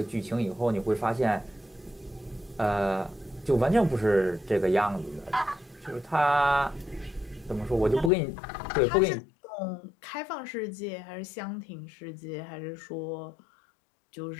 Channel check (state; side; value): drops out; right; at 8.1 s